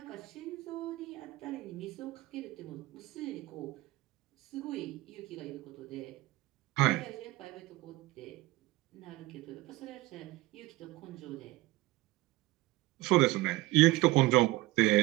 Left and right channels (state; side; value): quieter; left; 19.1 dB